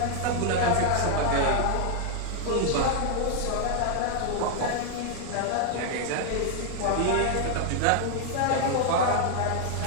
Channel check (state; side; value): different; both; correlation 0.00